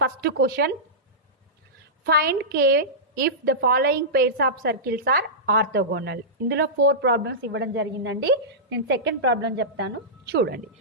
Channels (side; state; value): both; normal; correlation -0.15